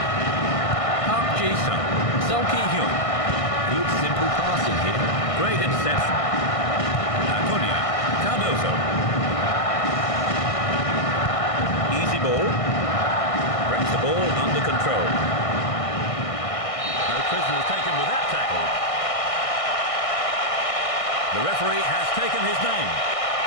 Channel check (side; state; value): right; late; 1.6 ms